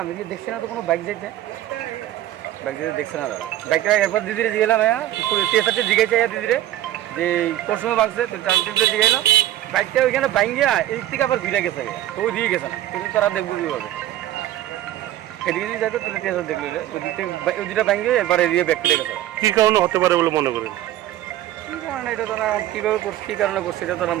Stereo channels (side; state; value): left; quieter; 13.7 dB